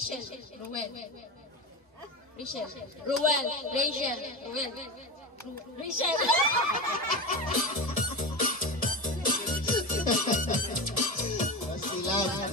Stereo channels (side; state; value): both; normal; correlation 0.23